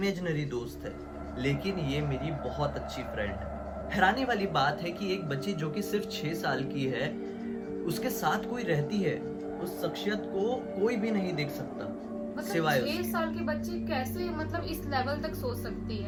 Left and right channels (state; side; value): identical; both; correlation 1.00